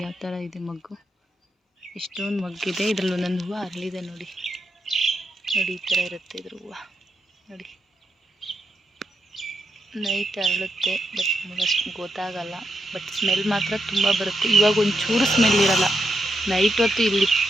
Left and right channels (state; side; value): normal; both; correlation 0.83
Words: ಯಾವ ಥರ ಇದೆ ಮಗ್ಗು, ಎಷ್ಟೊಂದು ಮಗ್ಗಿದೆ. ಇದರಲ್ಲಿ ಒಂದೊಂದು ಹೂವು ಅರಳಿದೆ ನೋಡಿ. ನೋಡಿ ಈ ಥರ ಇರುತ್ತೆ ಇದ್ರ ಹೂವು ನೋಡಿ. ನೈಟ್ ಅರಳುತ್ತೆ, ಬಟ್ ನಮಗಷ್ಟು ಗೊತ್ತಾಗಲ್ಲ, ಬಟ್ ಸ್ಮೆಲ್ ಮಾತ್ರ ತುಂಬ ಬರುತ್ತೆ. ಇವಾಗ ಒಂಚೂರು ಸ್ಮೆಲ್ ಇರಲ್ಲ, ನೈಟ್ ಹೊತ್ತು ಇಲ್ಲಿ